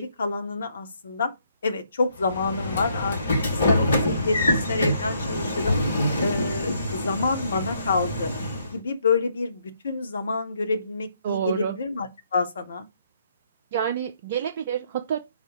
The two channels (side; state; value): both; inverted; correlation -0.71